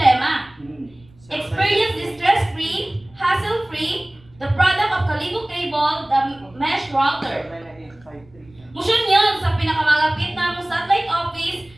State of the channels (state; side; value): noise; right; rumble, 28 dB below the sound